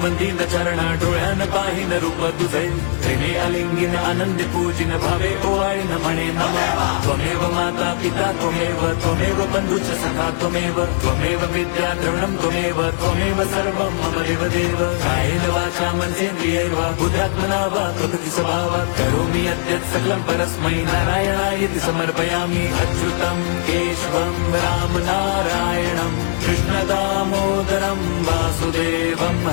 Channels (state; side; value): silent; right; 66 dB below the other